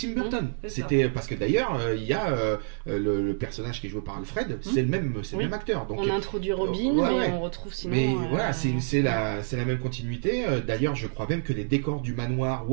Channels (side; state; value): left; silent; digital silence